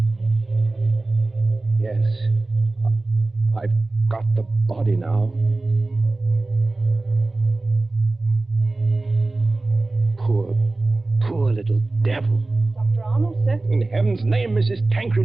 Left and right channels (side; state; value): left; quieter; 3.1 dB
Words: Yes. I've got the body now. Poor little devil. Dr. Arnold, sir. In heaven's name, Mrs. Tancred,